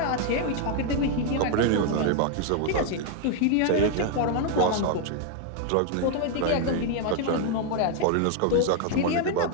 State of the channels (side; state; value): both; different; correlation 0.00